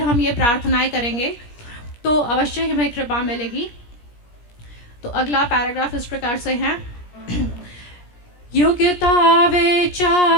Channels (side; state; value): right; late; 17 ms